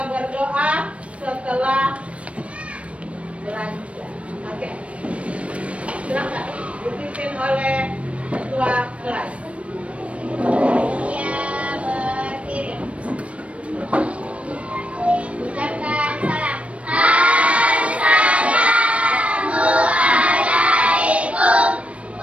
berdoa setelah belajar. Oke. Silakan dipimpin oleh ketua kelas. Ya, berdiri. Ucapkan salam. Assalamualaikum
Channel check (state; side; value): late; left; 0.063 ms